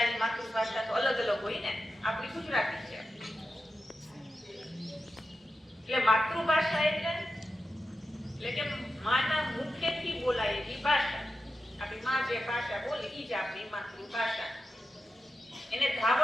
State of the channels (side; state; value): both; normal; correlation 0.91